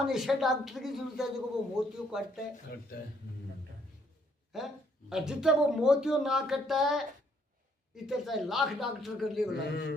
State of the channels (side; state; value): both; normal; correlation 0.68